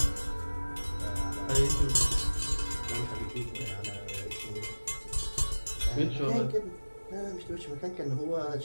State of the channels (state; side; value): inverted; both; correlation -1.00